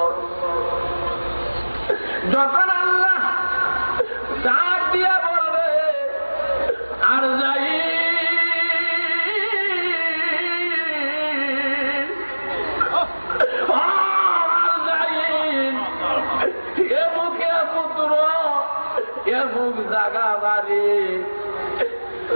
যখন আল্লাহ ডাক দিয়া বলবে আর যাই এ মুখে পুত্র এ মুখ জাগা বাড়ি,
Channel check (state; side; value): inverted; both; correlation -1.00